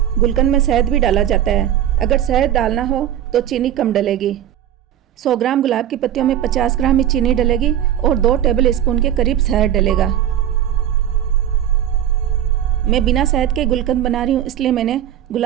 गुलकंद में शहद भी डाला जाता है। अगर शहद डालना हो तो चीनी कम डलेगी। 100 ग्राम गुलाब की पत्तियों में 50 ग्राम ही चीनी डलेगी और 2 टेबल स्पून के करीब शहद डलेगा। मैं बिना शहद के गुलकंद बना रही हूँ, इसलिए मैंने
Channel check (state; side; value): quieter; left; 10.8 dB